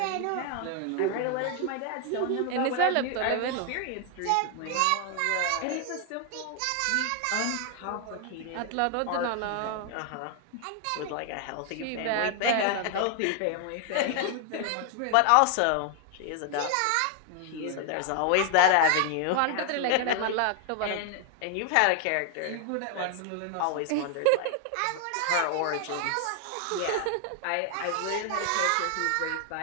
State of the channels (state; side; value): different; both; correlation 0.00